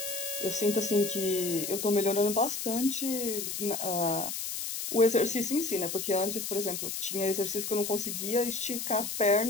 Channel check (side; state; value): left; noise; hiss, 4 dB below the sound